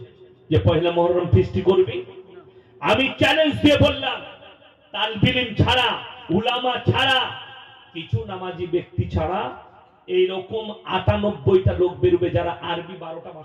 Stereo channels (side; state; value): both; identical; correlation 1.00